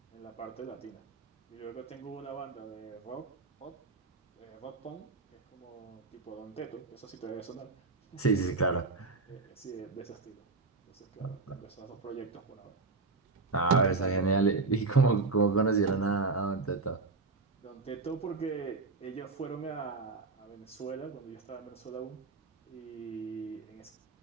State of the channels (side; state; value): left; quieter; 4.0 dB